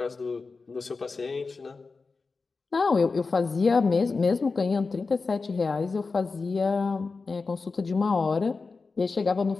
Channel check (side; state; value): right; quieter; 4.3 dB